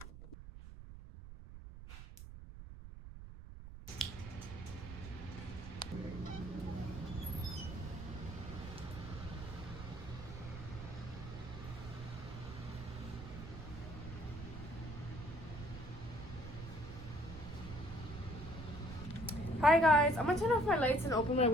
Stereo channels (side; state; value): right; noise; rumble, 12 dB below the sound